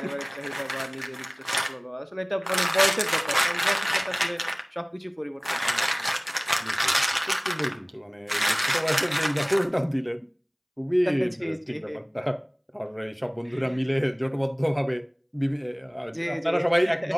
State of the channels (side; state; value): both; identical; correlation 1.00